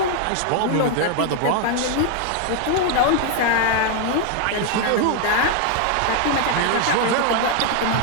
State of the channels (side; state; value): both; different; correlation 0.00